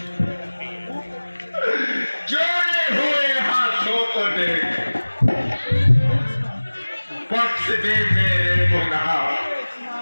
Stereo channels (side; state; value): both; inverted; correlation -1.00